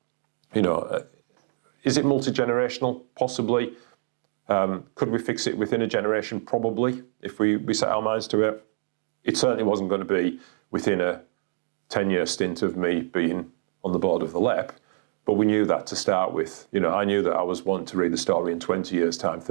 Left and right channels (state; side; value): silent; left; 61 dB below the other